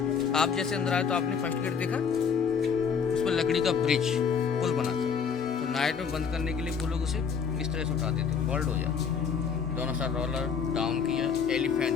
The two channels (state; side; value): quieter; right; 6.4 dB